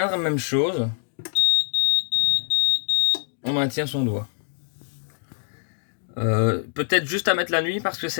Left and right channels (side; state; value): right; silent; digital silence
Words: même chose. On maintient son doigt. Peut-être juste à mettre la nuit parce que